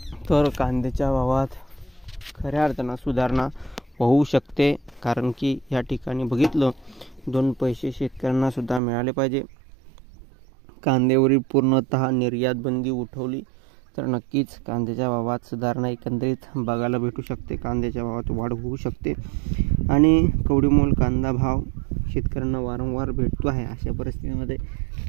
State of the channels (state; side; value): drops out; left; at 8.8 s